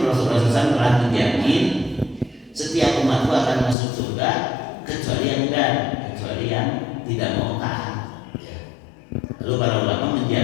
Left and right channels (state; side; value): drops out; right; at 3.8 s